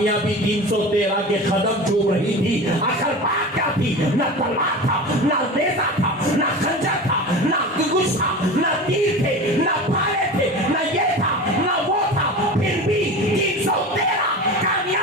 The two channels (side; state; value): both; normal; correlation 0.31